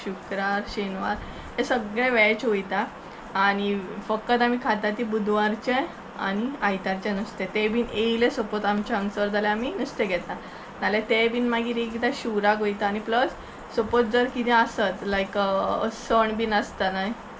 शुक्रार शेनवार हे सगळे वॅज वयता. आनी फकत आमी खाता ती बुधवारचें आनी आयतारचें नुस्तें. तें बीन येयलें सपोज आमच्या हांगसर जाल्यार आमी नुस्तें घेता. नाल्यार तें बीन मागीर एकदां शिवराक वयता. आनी प्लस सपोज जर कितें आसत लायक सण बीन आसता न्हय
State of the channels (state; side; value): identical; both; correlation 1.00